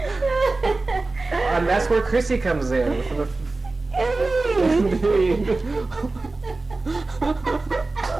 and that's where Chrissy comes in. Indeed.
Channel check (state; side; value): quieter; left; 3.3 dB